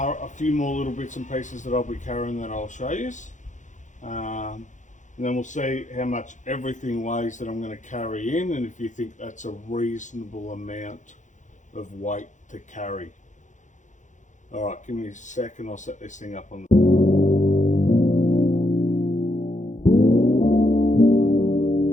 a few more little bits and pieces that I'll be carrying that I'll show you. And then we'll see how much everything weighs that I'm going to carry in and if you think that's a reasonable amount of weight to carry. Alright, give me a second, I'll set this thing up on the...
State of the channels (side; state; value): right; late; 0.36 ms